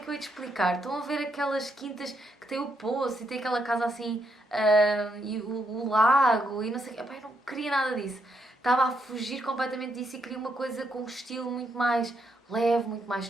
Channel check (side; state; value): both; normal; correlation 0.77